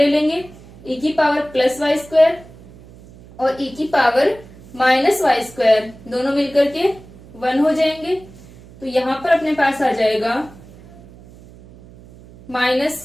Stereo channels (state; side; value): noise; right; hum, 21 dB below the sound